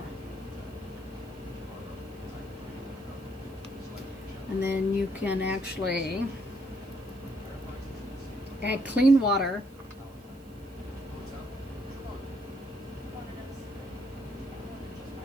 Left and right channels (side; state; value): right; noise; hiss, 27 dB below the sound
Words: And then you can actually add clean water.